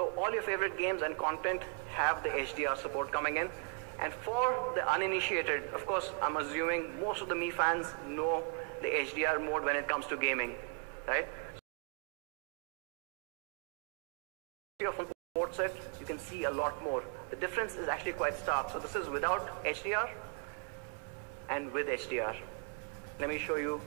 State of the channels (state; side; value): quieter; left; 37.3 dB